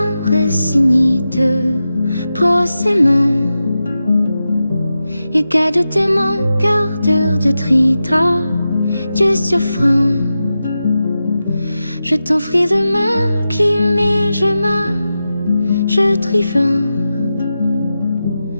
résigné de procément et garde tes mon cœur de trita Dieu souffrant. Je t'offris de ma clim et je trifant.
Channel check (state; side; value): inverted; both; correlation -0.91